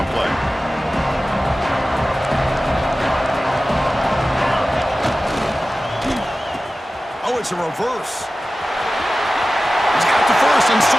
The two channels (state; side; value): normal; both; correlation 0.95